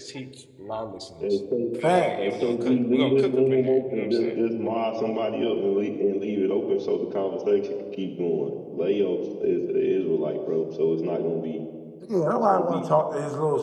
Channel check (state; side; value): identical; both; correlation 1.00